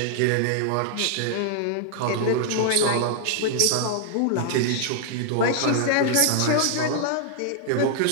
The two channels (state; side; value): different; both; correlation -0.01